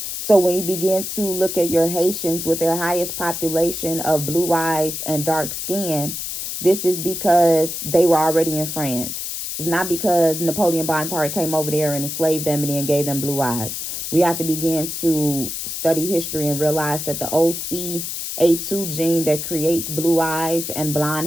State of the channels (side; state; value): left; noise; hiss, 5 dB below the sound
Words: So when you begin to look at your Haitians with their highest population of blue eyes and dark skin, this is because they were already in France. It's not because Napoleon Bonaparte came over there and enslaved them and then gave them blue eyes. We have to begin to study history and realize that the OCA2 gene that creates blue eyes and